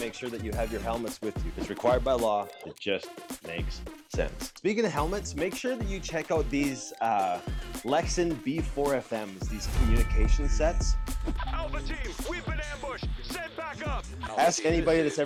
sure that you have your helmets with you. It's required by law. It just makes sense. Speaking of helmets, make sure that you check out these Lexin B4FMs, these communication sets. Alpha team, we've been ambushed. Send back up. Ask anybody that's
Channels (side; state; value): both; identical; correlation 1.00